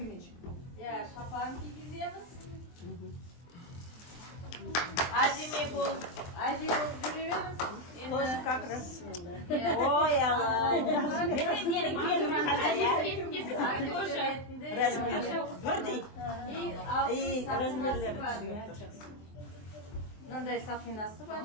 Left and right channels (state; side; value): late; right; 23 ms